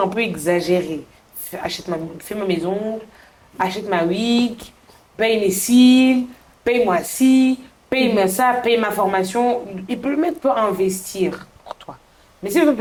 peu exagéré. Fais ma maison, achète ma wig, paye mes cils, paye-moi ci, paye-moi ça, paye ma formation. Il peut le mettre pour investir pour toi. Mais si le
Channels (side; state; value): both; identical; correlation 1.00